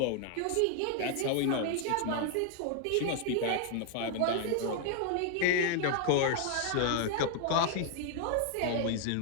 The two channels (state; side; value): different; both; correlation 0.00